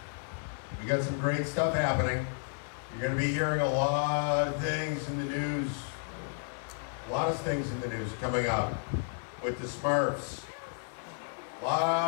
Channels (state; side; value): silent; right; digital silence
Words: some great stuff happening. You're going to be hearing a lot of things in the news. A lot of things in the news coming up with the SMURFS. A